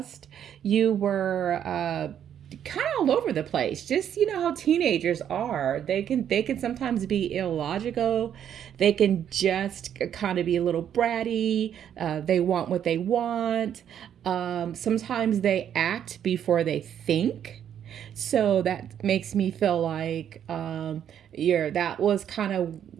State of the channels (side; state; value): left; quieter; 9.4 dB